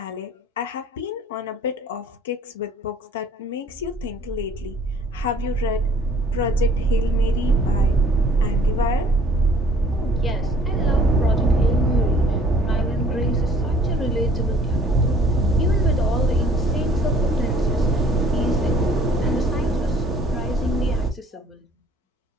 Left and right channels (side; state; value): both; normal; correlation 0.55